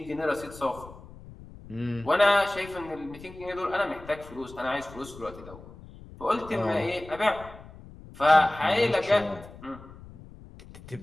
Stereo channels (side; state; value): left; noise; rumble, 18 dB below the sound